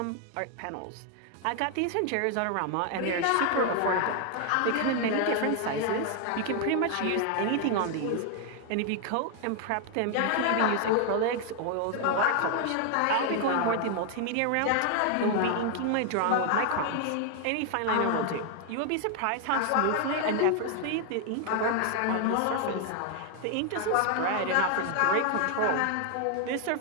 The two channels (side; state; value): both; different; correlation 0.00